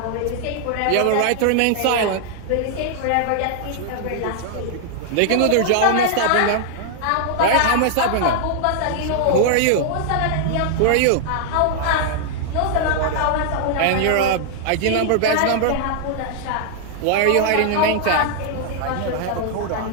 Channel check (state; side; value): different; both; correlation -0.01